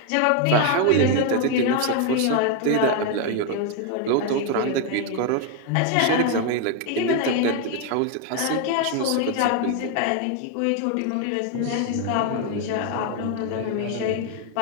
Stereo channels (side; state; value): both; different; correlation 0.01